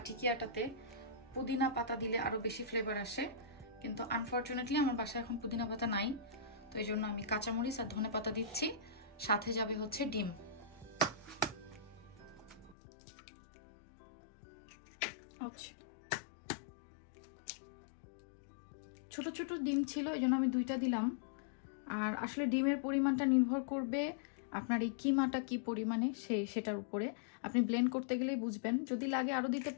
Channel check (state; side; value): drops out; right; at 12.8 s